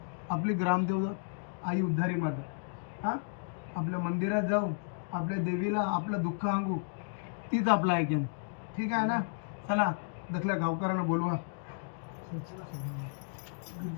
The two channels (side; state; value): right; silent; digital silence